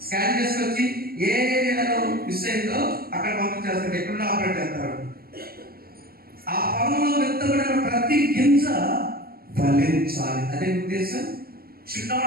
స్కాన్ చేసుకొచ్చి ఏ ఏరియాలో మిస్ అయిందో అక్కడ పంపించేస్తారు, ఎక్కడున్నా ఆపరేట్ చేస్తారు. ఆ పొలంలో విత్తబడిన ప్రతి గింజ ఫలించాలి, అదే ఉద్దేశం. Should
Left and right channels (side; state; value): left; late; 0.44 ms